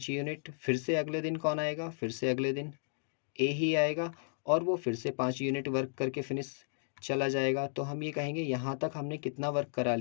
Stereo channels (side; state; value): right; silent; digital silence